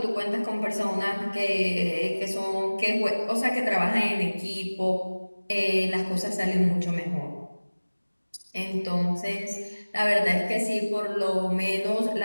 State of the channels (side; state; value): both; inverted; correlation -1.00